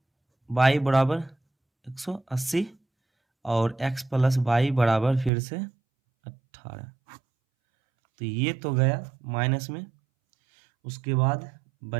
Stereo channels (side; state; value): left; drops out; at 5.3 s